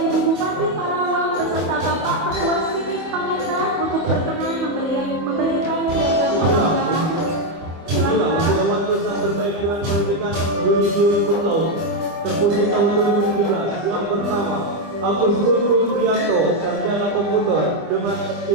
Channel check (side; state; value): left; late; 25 ms